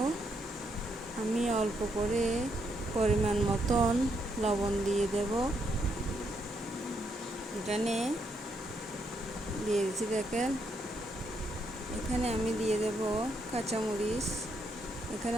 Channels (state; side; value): normal; both; correlation 0.77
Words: আমি অল্প করে পরিমাণ মতন লবণ দিয়ে দেব। এখানে দিয়ে দিচ্ছি, দেখেন। এখানে আমি দিয়ে দেব কাঁচামরিচ। এখানে